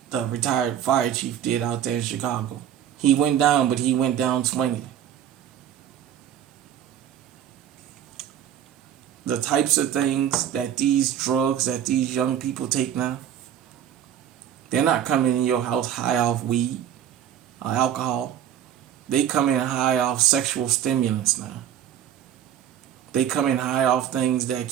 the retired fire chief did out there in Chicago. He went down, but he went down swinging. The types of things that these drugs that these young people take now, they're not coming in your house high off weed or alcohol. They come in high off sexual stimulants now. They come in high off things that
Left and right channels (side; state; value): left; quieter; 10.2 dB